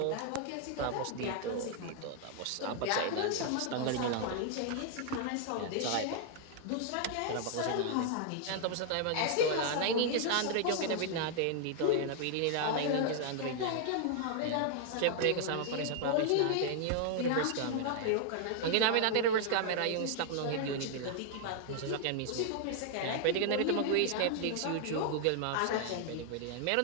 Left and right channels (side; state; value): both; different; correlation 0.00